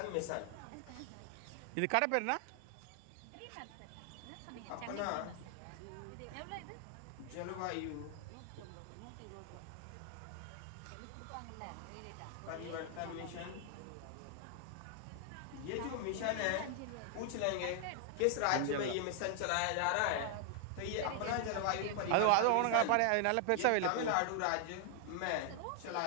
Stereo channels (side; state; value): both; different; correlation 0.00